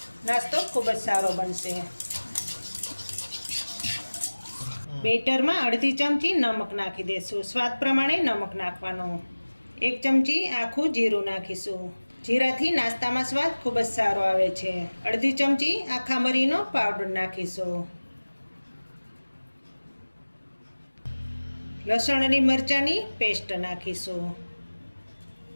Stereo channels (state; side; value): inverted; both; correlation -1.00